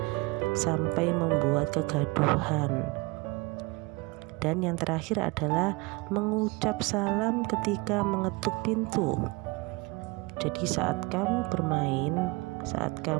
sampai membuat kegaduhan. Dan yang terakhir adalah mengucap salam ketika mengetuk pintu. Jadi saat kamu bermain, saat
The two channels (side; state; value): left; quieter; 25.0 dB